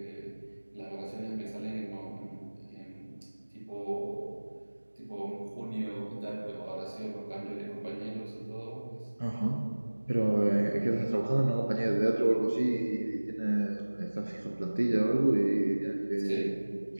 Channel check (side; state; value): both; inverted; correlation -1.00